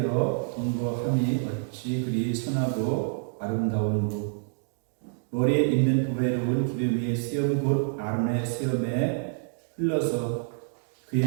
동거함이 어찌 그리 선하고 아름다운고. 머리에 있는 보배로운 기름 위에 쓰염 곧 아론의 수염에 흘러서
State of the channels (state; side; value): silent; left; digital silence